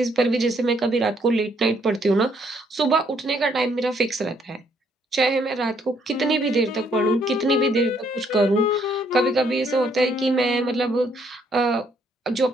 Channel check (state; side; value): normal; both; correlation 0.69